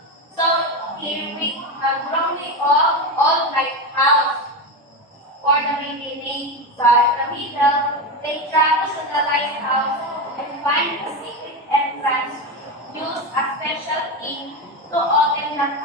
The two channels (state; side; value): normal; both; correlation 0.16